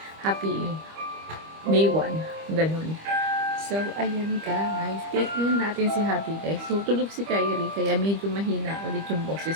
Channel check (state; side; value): late; left; 25 ms